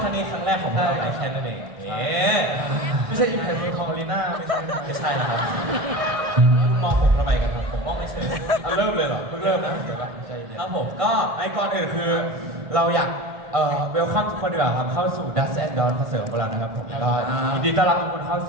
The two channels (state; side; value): late; left; 1.6 ms